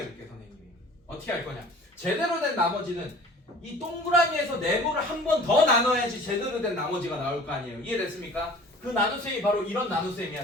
볼게, 선생님이. 어떻게 할 거냐? 제대로 된 나머지는 이 동그라미에서 네모를 한 번 더 나눠야지 제대로 된 나머지가 나올 거 아니에요. 이해됐습니까? 그 나눗셈이 바로 이런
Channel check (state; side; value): normal; both; correlation 0.46